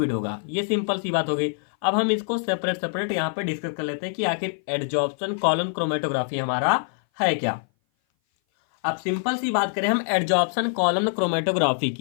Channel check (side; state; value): right; silent; 57 dB below the other